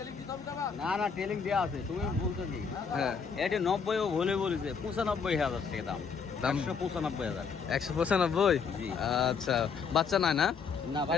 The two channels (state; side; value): quieter; right; 5.9 dB